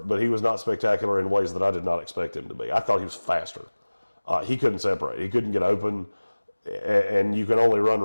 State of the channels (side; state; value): both; inverted; correlation -1.00